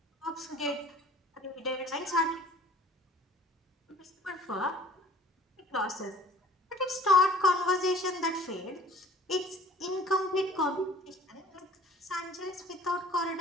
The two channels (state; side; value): normal; both; correlation 0.50